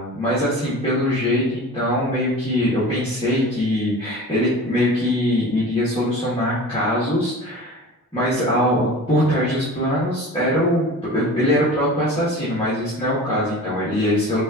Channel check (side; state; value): both; normal; correlation 0.37